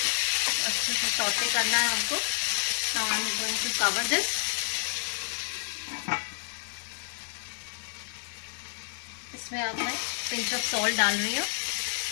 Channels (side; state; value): right; silent; digital silence